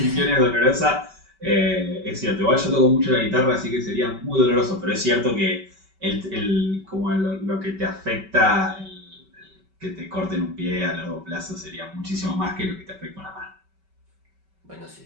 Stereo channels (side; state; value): left; late; 5.2 ms